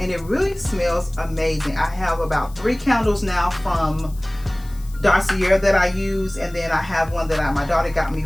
it really smells amazing. I have about 3 candles now from Dossier that I use, and then I have one that my daughter got me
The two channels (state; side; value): noise; left; hiss, 23 dB below the sound